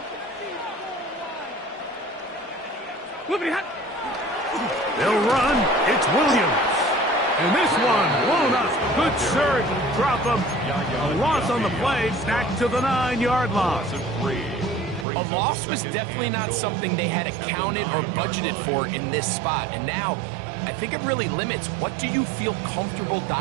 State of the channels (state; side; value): drops out; left; at 15.1 s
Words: They'll run. It's Williams. And this one blown up. Good surge. Drop him. A loss on the play. Back to the 9-yard line. A loss was definitely not something they had accounted or budgeted for in this spot. And now, I think it really limits what do you feel comfortable